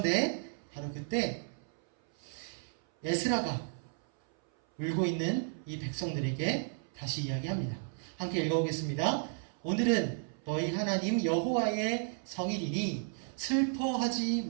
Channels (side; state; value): left; silent; 56 dB below the other